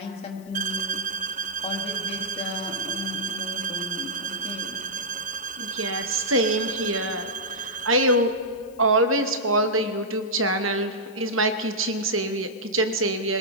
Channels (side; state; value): left; noise; hiss, 27 dB below the sound